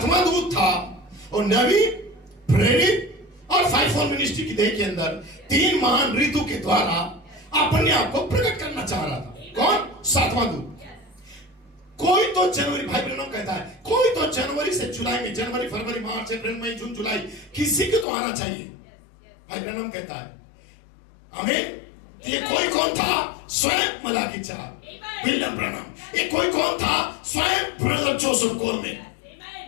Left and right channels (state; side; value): drops out; right; at 18.1 s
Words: दूत था वो नबी, प्रेरित और 5 मिनिस्ट्री की देह के अंदर 3 महान ऋतु के द्वारा अपने आप को प्रकट करना चाह रहा था। कौन? 7वां दूत। कोई तो जनवरी, भाई ब्रनम कहता है, कोई तो जनवरी से जुलाई में, जनवरी फरवरी मार्च अप्रैल मई जून जुलाई, किसी को तो आना चाहिए। भाई ब्रनम कहता है, आमीन। ये कोई कौन था? स्वयं मलाकी 4, विलियम ब्रनम। ये कोई कौन था? स्वयं ब्रदर जोसेफ कोलमैन।